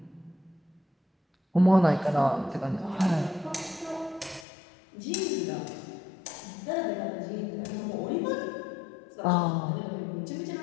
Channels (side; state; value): right; drops out; at 4.5 s